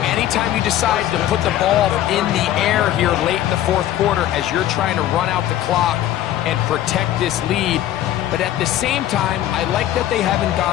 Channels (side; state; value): right; quieter; 12.6 dB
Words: anytime you decide to put the ball in the air here late in the fourth quarter as you're trying to run out the clock and protect this lead. But at the same time, I like that they haven't